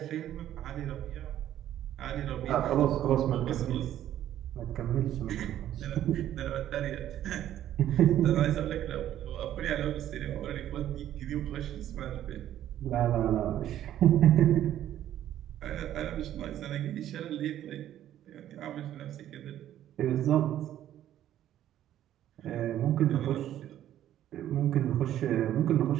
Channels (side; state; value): left; quieter; 11.9 dB